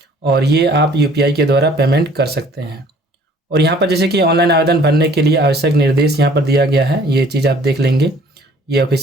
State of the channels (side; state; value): both; normal; correlation 0.55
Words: और ये आप UPI के द्वारा पेमेंट कर सकते हैं। और यहाँ पर जैसे कि ऑनलाइन आवेदन भरने के लिए आवश्यक निर्देश यहाँ पर दिया गया है, ये चीज़ आप देख लेंगे। ये